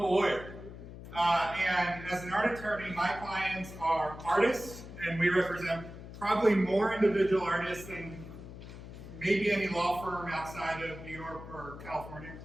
lawyer. And as an art attorney, my clients are artists, and we represent probably more individual artists than maybe any law firm outside of New York or California.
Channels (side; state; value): left; noise; hum, 13 dB below the sound